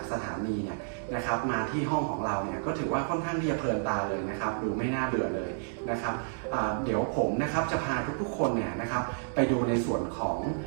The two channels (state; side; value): silent; left; digital silence